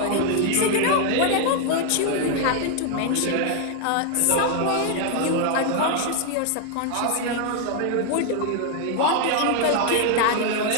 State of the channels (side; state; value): both; different; correlation 0.00